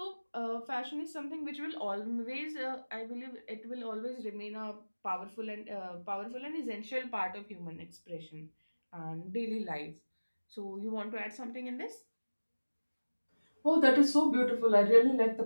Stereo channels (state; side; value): inverted; both; correlation -1.00